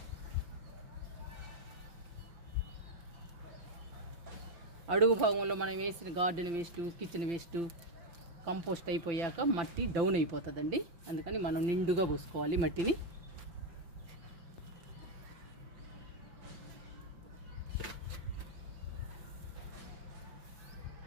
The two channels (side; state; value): left; late; 5.9 ms